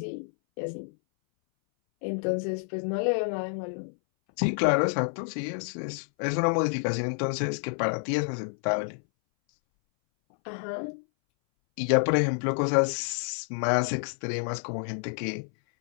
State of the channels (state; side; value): silent; right; 59 dB below the other